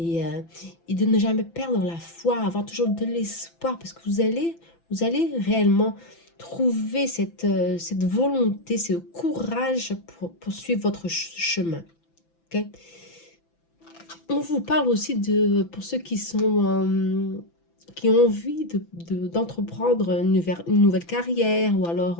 de ne jamais perdre la foi, avoir toujours de l'espoir parce que vous allez réellement trouver cette volonté, ce courage pour poursuivre votre chemin. Okay? On vous parle aussi pour ceux qui qui ont envie d'entreprendre une nouvelle carrière ou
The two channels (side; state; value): right; late; 5.9 ms